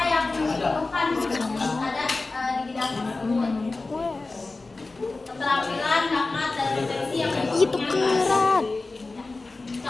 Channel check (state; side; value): quieter; right; 3.5 dB